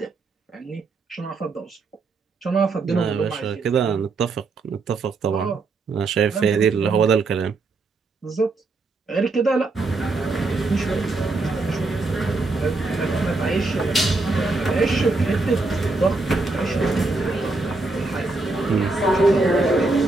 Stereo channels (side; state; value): left; quieter; 3.5 dB